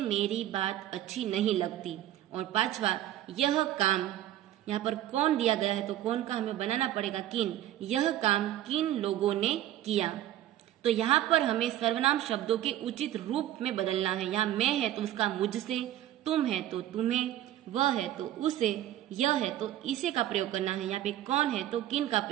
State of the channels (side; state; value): left; quieter; 13.1 dB